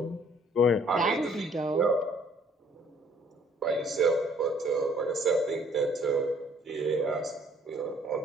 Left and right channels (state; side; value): normal; both; correlation 0.60